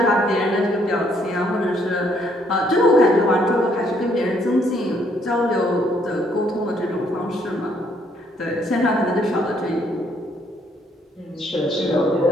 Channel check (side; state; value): both; normal; correlation 0.68